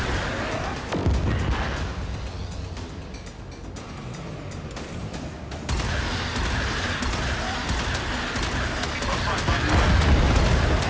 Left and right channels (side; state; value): both; identical; correlation 1.00